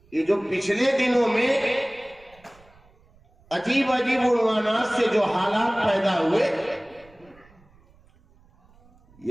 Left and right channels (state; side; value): noise; right; rumble, 29 dB below the sound